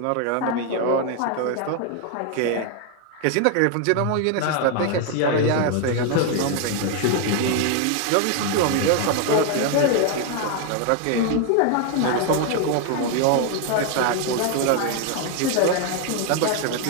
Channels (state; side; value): different; both; correlation 0.01